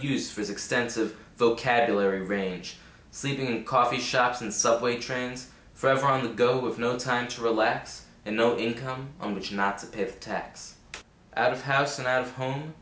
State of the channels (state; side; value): identical; both; correlation 1.00